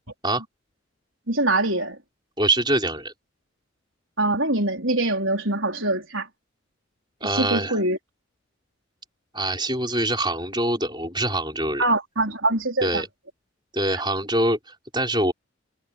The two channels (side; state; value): both; normal; correlation 0.07